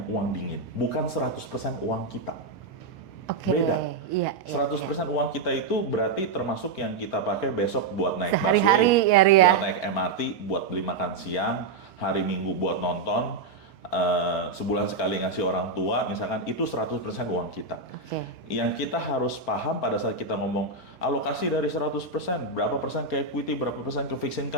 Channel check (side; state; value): left; quieter; 4.0 dB